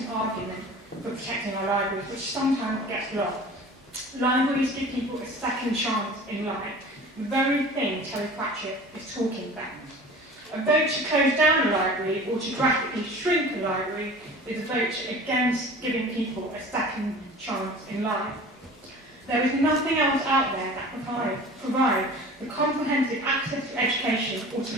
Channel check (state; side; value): normal; both; correlation 0.41